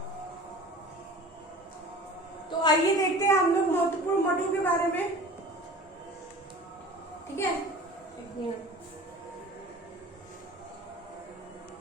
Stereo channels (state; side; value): normal; both; correlation 0.40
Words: तो आइए देखते हैं हम लोग महत्वपूर्ण मठों के बारे में। ठीक है, एक मिनट।